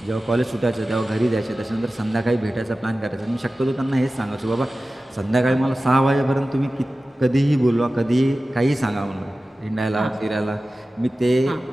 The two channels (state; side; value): normal; both; correlation 0.95